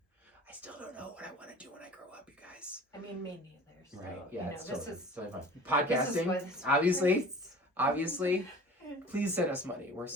I still don't know what I want to do when I grow up, you guys. I mean, me neither. So, Right? Yeah, it's totally fun. This is Podcasting, what it's obviously. Please send us money. We're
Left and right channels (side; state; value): both; normal; correlation 0.41